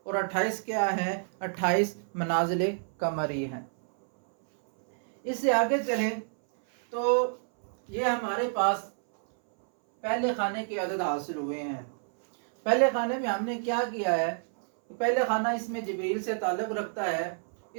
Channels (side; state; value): left; silent; 59 dB below the other